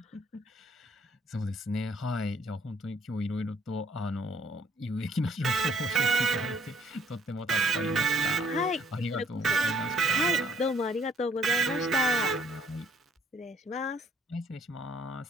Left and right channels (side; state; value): both; normal; correlation 0.64